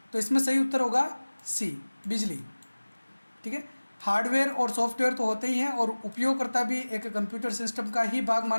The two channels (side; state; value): both; inverted; correlation -1.00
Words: तो इसमें सही उत्तर होगा सी, बिजली। ठीक है, हार्डवेयर और सॉफ्टवेयर तो होते ही हैं और उपयोगकर्ता भी एक कंप्यूटर सिस्टम का ही भाग